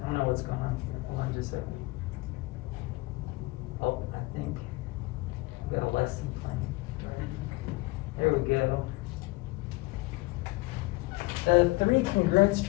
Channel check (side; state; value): right; quieter; 22.6 dB